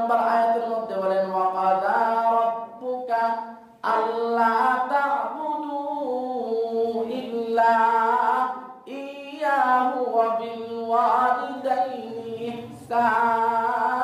আয়াতের মধ্যে বলেন ওয়া কাযা রাব্বুকা আল্লা তা'বুদু ইল্লা ইয়াহু ওয়া বিল ওয়ালিদাইনি ইহসানা।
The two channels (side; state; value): both; identical; correlation 1.00